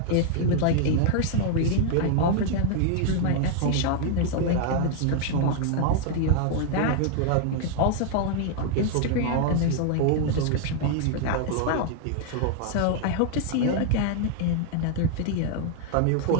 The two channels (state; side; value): different; both; correlation 0.00